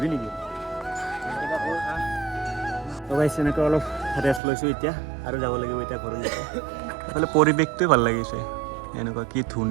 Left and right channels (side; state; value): left; drops out; at 4.4 s